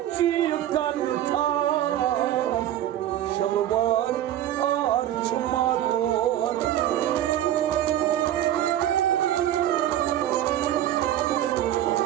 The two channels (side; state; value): left; quieter; 12.2 dB